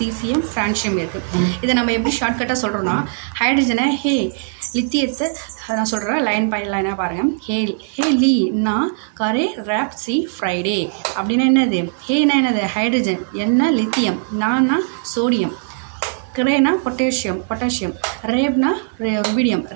francium இருக்கு. இத நம்ம எப்படி ஷார்ட்கட்டா சொல்றோம்னா ஹைட்ரஜனை லித்தியத்தை நான் சொல்றேன் லைன் பை லைனா பாருங்க. ஹே லீ நா கரே ராப் சி ஃப்ரைடே அப்படின்னா என்னது? ஹேனா என்னது? ஹைட்ரஜன், என்ன லித்தியம், நானா சோடியம், கிரேனா பொட்டாசியம், ரேப்னா ருபீடியம்,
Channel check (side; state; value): left; silent; digital silence